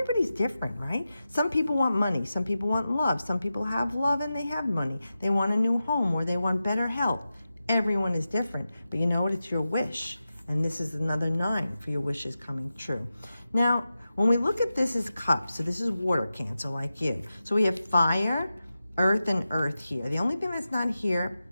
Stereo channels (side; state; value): both; inverted; correlation -0.92